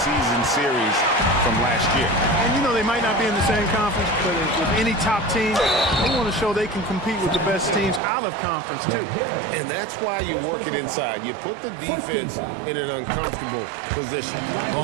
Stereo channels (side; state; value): left; drops out; at 8.0 s